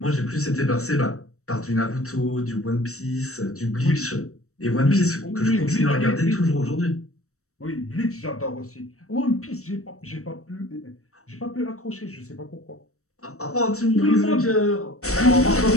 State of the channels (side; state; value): right; late; 0.64 ms